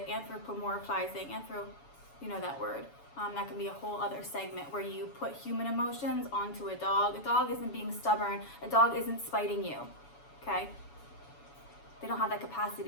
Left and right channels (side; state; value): right; late; 7.1 ms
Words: anthropomorphizing, you know that word. That can be a whole other segment where you put human emotions onto a dog. A dog isn't being stubborn. A dog isn't spiting you, okay? They don't have that